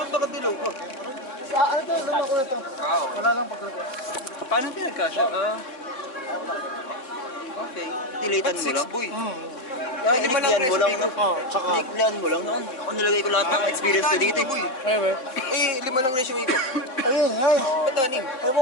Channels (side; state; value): right; late; 3.7 ms